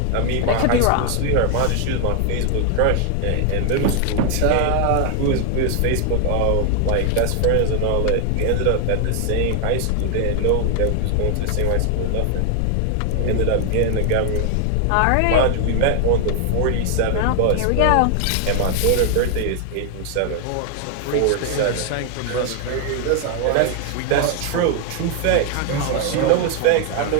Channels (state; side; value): different; both; correlation 0.00